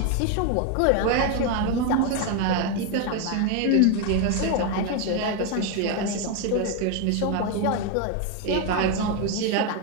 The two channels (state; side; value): different; both; correlation 0.01